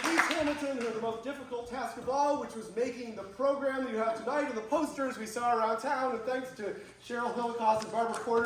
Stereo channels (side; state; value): both; identical; correlation 1.00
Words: Denise Hamilton, who had the most difficult task of all, which was making the program that you have tonight and the posters we saw around town. And thanks to Cheryl Hillicoss and Barbara